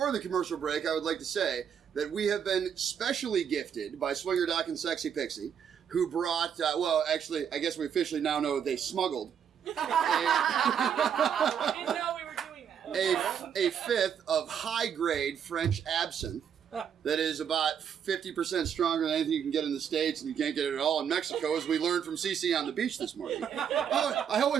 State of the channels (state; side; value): quieter; left; 8.1 dB